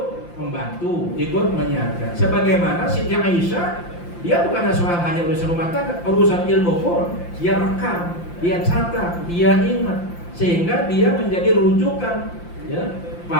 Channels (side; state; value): right; late; 5.8 ms